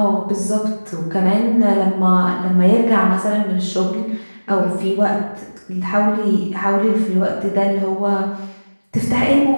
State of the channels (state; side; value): inverted; both; correlation -1.00